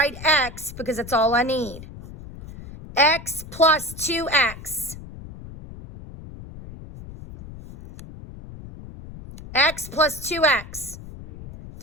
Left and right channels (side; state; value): left; noise; rumble, 14 dB below the sound